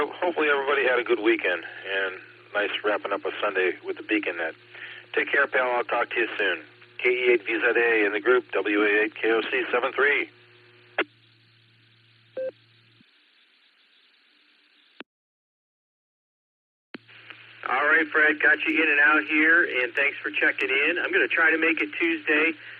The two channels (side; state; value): both; identical; correlation 1.00